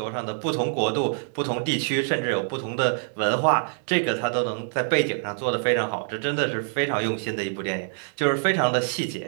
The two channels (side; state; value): left; silent; digital silence